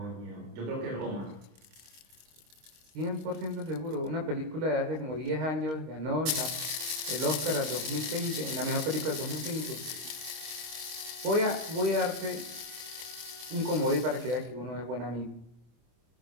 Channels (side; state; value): left; late; 26 ms